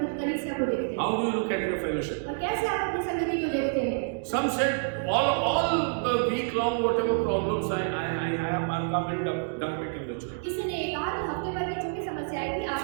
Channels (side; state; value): left; silent; digital silence